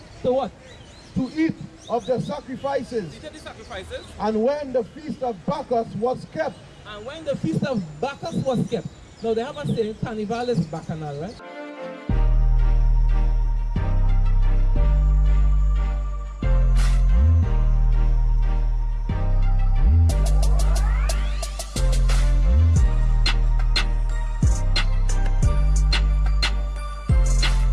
To what? To eat of the sacrifices. Eat of the sacrifices. And when the feast of Bacchus was kept, And when the feast of Bacchus was kept. Now they have a saying, Carnival is Bacchanal, right?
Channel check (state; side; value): identical; both; correlation 1.00